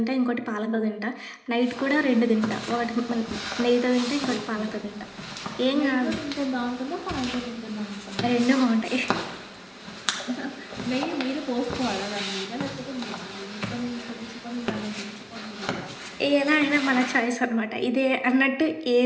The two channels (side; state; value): both; identical; correlation 1.00